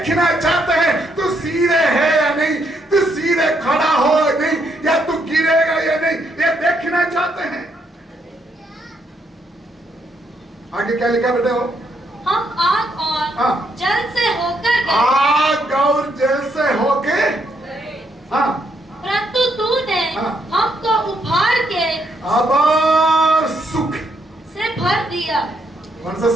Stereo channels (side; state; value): both; normal; correlation 0.75